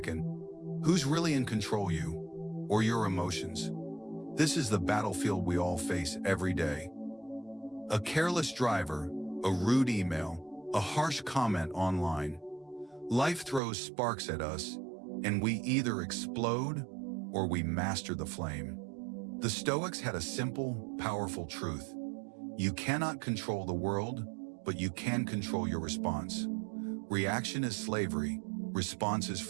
who's really in control, you or your emotions? This is the battlefield we all face every day. A careless driver, a rude email, a harsh comment online. Life throws sparks at us, and we either explode or we master the flame. The Stoics had a simple, powerful truth. You cannot control the world, but you can control your response. Reaction is slavery, response is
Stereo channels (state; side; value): drops out; left; at 13.6 s